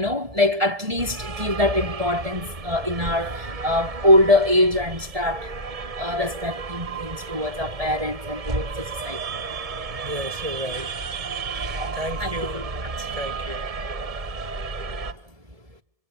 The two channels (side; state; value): left; late; 1.7 ms